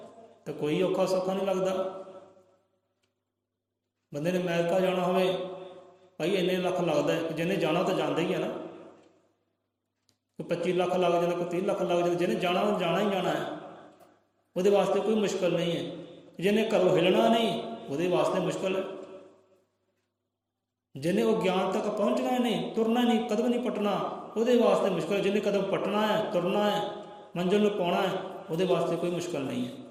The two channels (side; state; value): both; identical; correlation 1.00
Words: ਤਾਂ ਕੋਈ ਔਖਾ ਸੌਖਾ ਨਹੀਂ ਲੱਗਦਾ। ਬੰਦੇ ਨੇ ਅਮਰੀਕਾ ਜਾਣਾ ਹੋਵੇ, ਭਾਈ ਇੰਨੇ ਲੱਖ ਲੱਗਦਾ ਹੈ। ਜਿਹਨੇ ਜਾਣਾ ਤਾਂ ਜਾਂਦਾ ਹੀ ਹੈ ਨਾ, ਕੋਈ 25 ਲੱਖ ਲੱਗ ਜਾਂਦਾ, ਕੋਈ 30 ਲੱਖ ਲੱਗ ਜਾਂਦਾ। ਜਿਹਨੇ ਜਾਣਾ ਉਹ ਜਾਣਾ ਹੀ ਜਾਣਾ ਹੈ, ਉਹਦੇ ਵਾਸਤੇ ਕੋਈ ਮੁਸ਼ਕਿਲ ਨਹੀਂ ਹੈ। ਜਿਹਨੇ ਘਰੋਂ ਹਿੱਲਣਾ ਨਹੀਂ, ਉਹਦੇ ਵਾਸਤੇ ਮੁਸ਼ਕਿਲ ਹੈ। ਜਿਹਨੇ ਉਹ ਗਿਆਨ ਤੱਕ ਪਹੁੰਚਣਾ ਨਹੀਂ, ਤੁਰਨਾ ਨਹੀਂ, ਕਦਮ ਨਹੀਂ ਪਟਣਾ, ਉਹਦੇ ਵਾਸਤੇ ਮੁਸ਼ਕਿਲ। ਜਿਹਨੇ ਕਦਮ ਪਟਣਾ ਹੈ, ਤੁਰਨਾ ਹੈ, ਮੰਜ਼ਿਲ ਨੂੰ ਪਾਉਣਾ ਹੈ, ਉਹਦੇ ਵਾਸਤੇ ਕੋਈ ਮੁਸ਼ਕਿਲ ਨਹੀਂ ਹੈ,